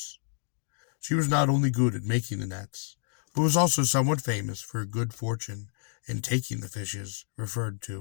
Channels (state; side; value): silent; right; digital silence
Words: She was not only good at making the nets, but was also somewhat famous for her good fortune in taking the fishes referred